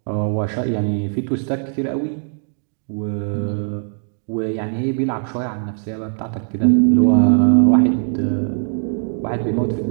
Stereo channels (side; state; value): left; silent; 66 dB below the other